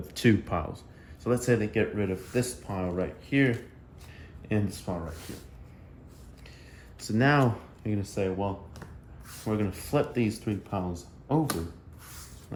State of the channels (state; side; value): identical; both; correlation 1.00